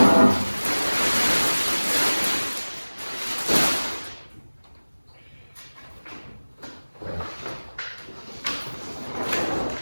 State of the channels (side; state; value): both; inverted; correlation -1.00